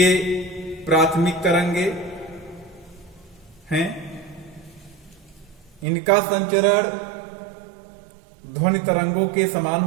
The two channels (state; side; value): drops out; left; at 5.9 s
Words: प्राथमिक तरंगे हैं। इनका संचरण ध्वनि तरंगों के समान